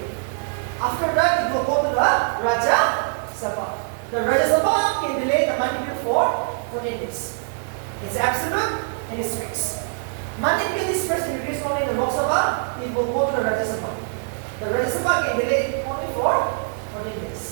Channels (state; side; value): silent; left; 63 dB below the other